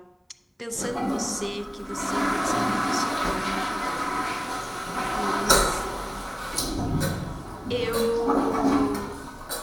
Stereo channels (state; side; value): identical; both; correlation 1.00